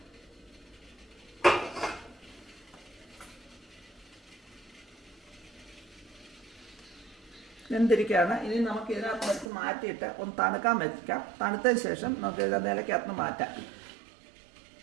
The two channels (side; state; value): left; drops out; at 9.5 s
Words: വെന്തിരിക്കുകയാണ്. ഇനി നമുക്ക് ഇതിനകത്ത് വെച്ച് മാറ്റിയിട്ട് ഒന്ന് തണുക്കാൻ വെക്കാം. തണുത്തതിന് ശേഷം നമുക്ക് ഇത് നിലയ്ക്കകത്ത് മാറ്റാം.